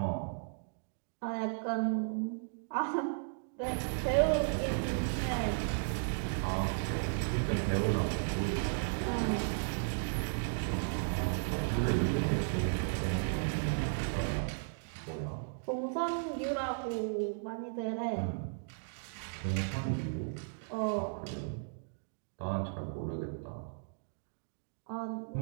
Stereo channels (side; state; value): left; silent; digital silence